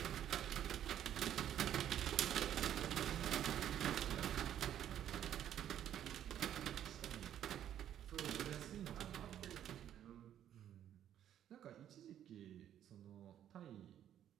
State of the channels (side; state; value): left; quieter; 10.6 dB